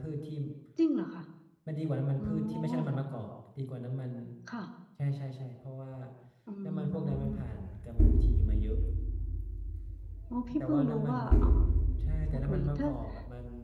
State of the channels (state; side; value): identical; both; correlation 1.00